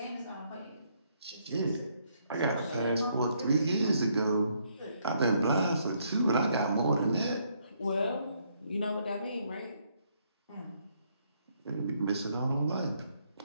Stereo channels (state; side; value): inverted; both; correlation -0.72